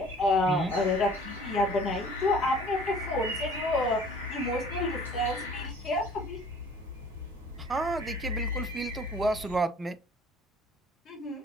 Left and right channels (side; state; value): both; normal; correlation 0.50